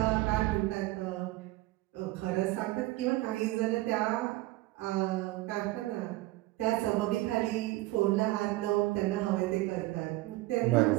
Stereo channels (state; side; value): quieter; left; 18.8 dB